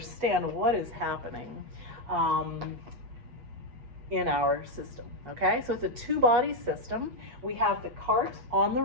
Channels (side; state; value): left; late; 8.2 ms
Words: what is happening in our system, okay? So it's a two-body system. We have the cart on the